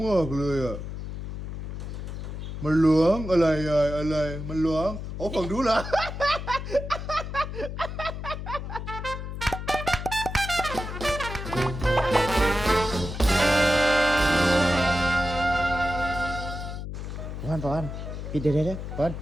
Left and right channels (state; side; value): noise; left; hum, 7 dB below the sound